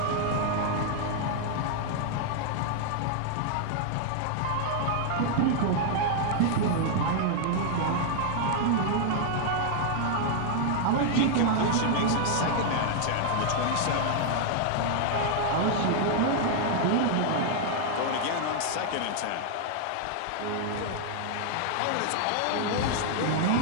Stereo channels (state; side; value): different; both; correlation 0.00